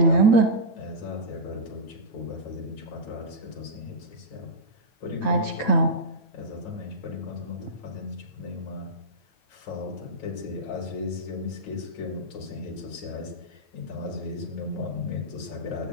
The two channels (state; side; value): late; right; 9.1 ms